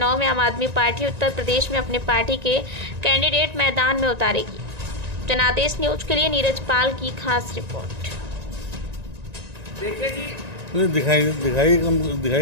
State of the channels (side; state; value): left; late; 1.9 ms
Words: में आम आदमी पार्टी उत्तर प्रदेश में अपने पार्टी के कैंडिडेट मैदान में उतारेगी। जनादेश न्यूज के लिए नीरज पाल की खास रिपोर्ट। देखिए जी, दिखाई कहाँ दे